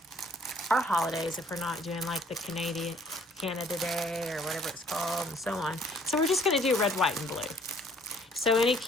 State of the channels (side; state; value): both; normal; correlation 0.59